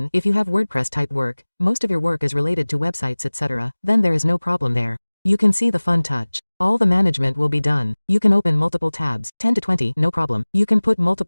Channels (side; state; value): both; inverted; correlation -1.00